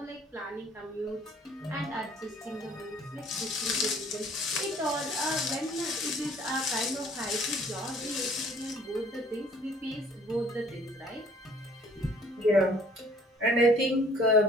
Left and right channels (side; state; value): both; normal; correlation 0.56